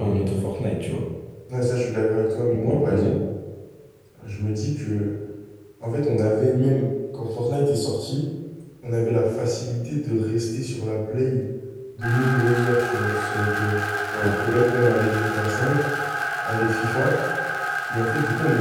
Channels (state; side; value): identical; both; correlation 1.00